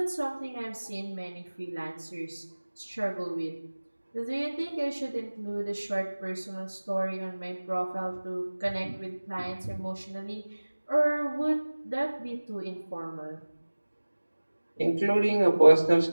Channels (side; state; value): both; inverted; correlation -1.00